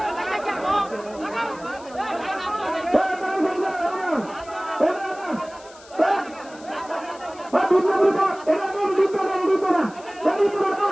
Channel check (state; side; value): noise; left; hiss, 22 dB below the sound